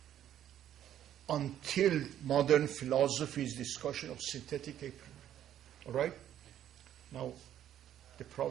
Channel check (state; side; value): quieter; left; 11.1 dB